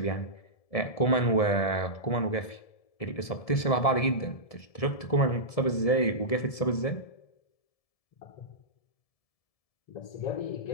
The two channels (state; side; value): late; right; 1.7 ms